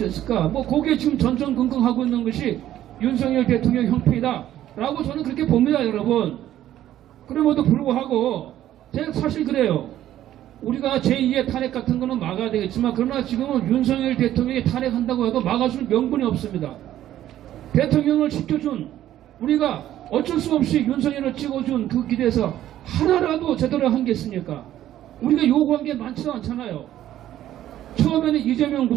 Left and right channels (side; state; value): left; quieter; 12.6 dB